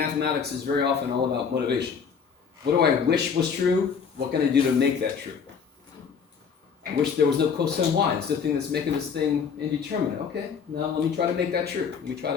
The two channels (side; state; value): right; quieter; 6.4 dB